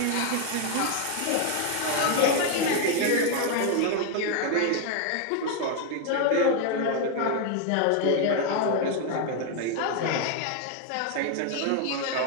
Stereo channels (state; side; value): different; both; correlation 0.01